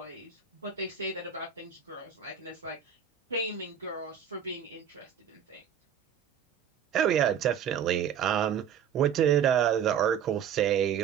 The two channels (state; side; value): quieter; left; 8.5 dB